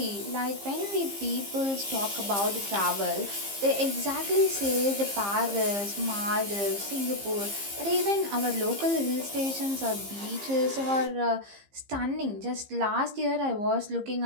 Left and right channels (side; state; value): left; late; 15 ms